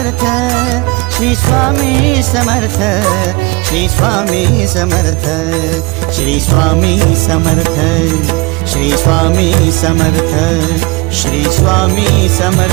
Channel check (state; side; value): quieter; left; 25.2 dB